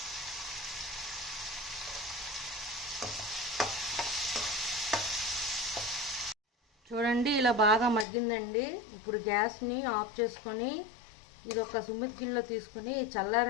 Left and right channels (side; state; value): right; drops out; at 8.1 s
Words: చూడండి, ఇలా బాగా మగ్గిందండి. ఇప్పుడు గ్యాస్ని ఆఫ్ చేసుకొని ఇది ఒక సుమ్మిడి గిన్నెలో తీసుకొని